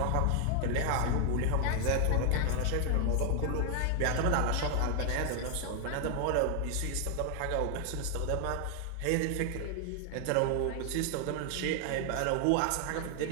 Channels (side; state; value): both; different; correlation 0.00